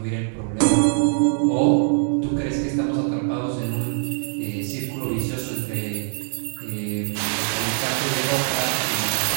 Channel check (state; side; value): silent; left; digital silence